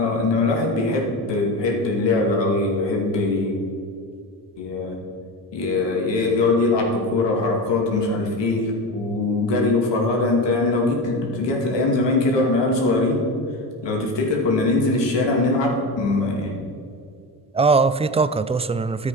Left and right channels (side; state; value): both; normal; correlation 0.23